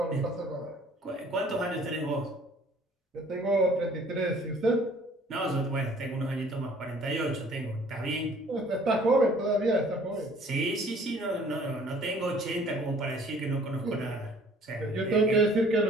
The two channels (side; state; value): both; normal; correlation 0.55